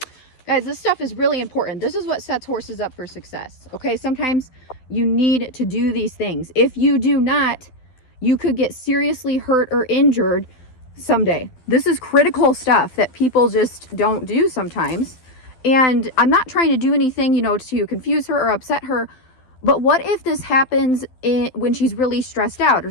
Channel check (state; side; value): late; right; 12 ms